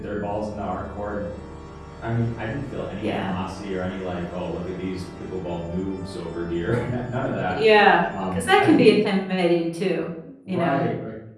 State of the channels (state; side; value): identical; both; correlation 1.00